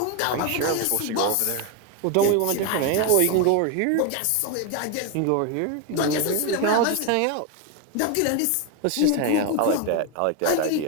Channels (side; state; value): both; different; correlation 0.01